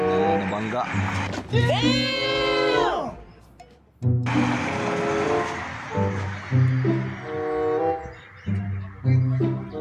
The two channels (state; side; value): identical; both; correlation 1.00